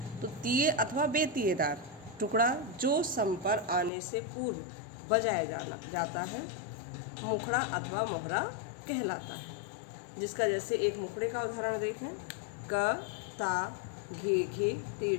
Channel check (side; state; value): right; drops out; at 3.9 s